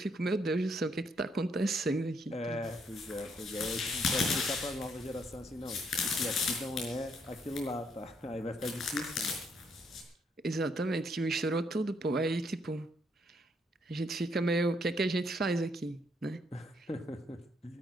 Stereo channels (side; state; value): both; normal; correlation 0.72